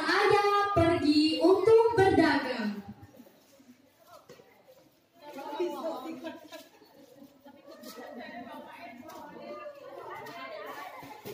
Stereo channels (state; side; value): identical; both; correlation 1.00